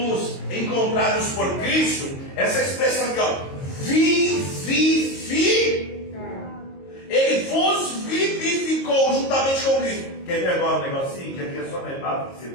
encontrados por Cristo, essa expressão aqui, ó, Ele vos vivificou juntamente com Cristo. Quer ver agora um negocinho? Que aqui é só na etapa que você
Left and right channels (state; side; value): late; right; 22 ms